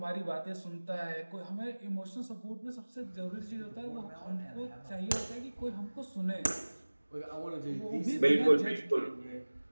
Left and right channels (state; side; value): inverted; both; correlation -1.00